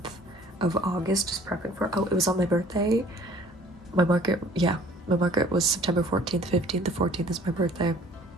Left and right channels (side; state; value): both; normal; correlation 0.52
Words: of August just prepping for, it was on my birthday. My market was September 14th, 15th. The 14th is my birthday.